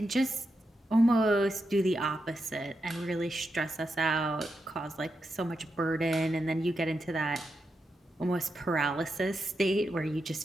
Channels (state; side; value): normal; both; correlation 0.86